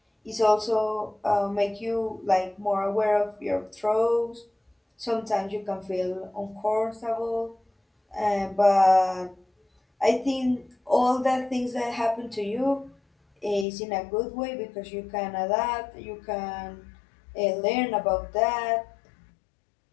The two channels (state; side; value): drops out; right; at 13.7 s